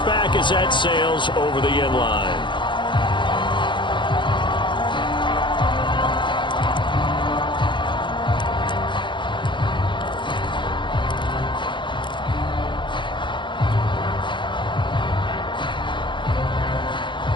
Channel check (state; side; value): late; right; 0.23 ms